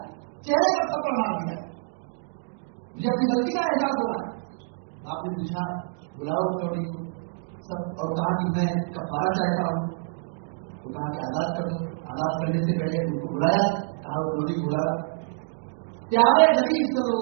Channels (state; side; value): silent; left; digital silence